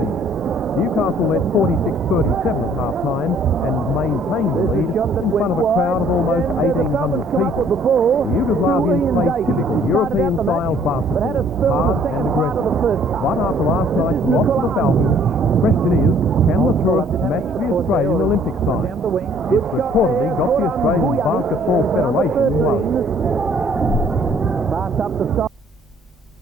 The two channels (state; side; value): normal; both; correlation 0.59